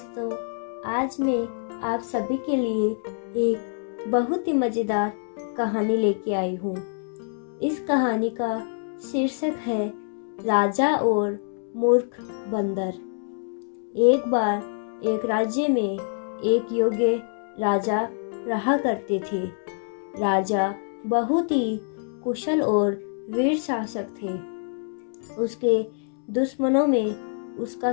आज मैं आप सभी के लिए एक बहुत ही मज़ेदार कहानी लेके आई हूँ। इस कहानी का शीर्षक है राजा और मूर्ख बंदर। एक बार एक राज्य में एक योग्य राजा रहा करते थे। राजा बहुत ही कुशल और वीर शासक थे। उसके दुश्मनों में उसका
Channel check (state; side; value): silent; right; digital silence